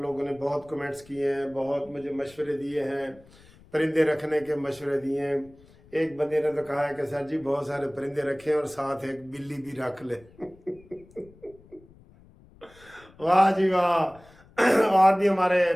نے بہت کمنٹس کیے ہیں، بہت مجھے مشورے دیے ہیں، پرندے رکھنے کے مشورے دیے ہیں۔ ایک بندے نے تو کہا ہے کہ سر جی بہت سارے پرندے رکھیں اور ساتھ ایک بلی بھی رکھ لیں۔ واہ جی واہ! اور بھی ہمارے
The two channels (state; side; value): noise; left; rumble, 26 dB below the sound